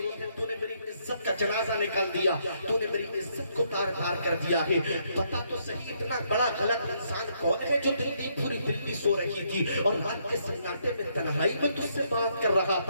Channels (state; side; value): inverted; both; correlation -0.73